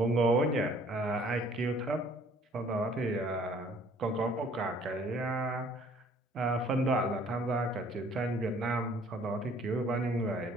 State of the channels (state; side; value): normal; both; correlation 0.57